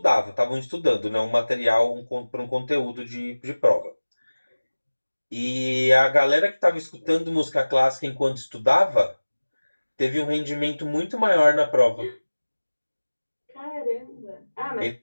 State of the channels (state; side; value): inverted; both; correlation -1.00